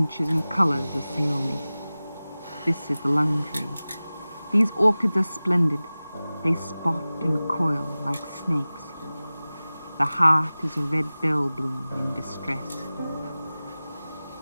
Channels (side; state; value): both; inverted; correlation -0.97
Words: and colors assail me. This is the lung tree. These orchids are splendid. They spot and coil like snakes. The heart is a red bell bloom in distress.